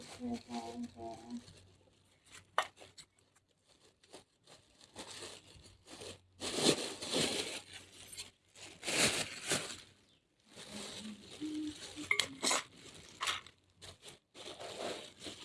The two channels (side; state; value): both; identical; correlation 1.00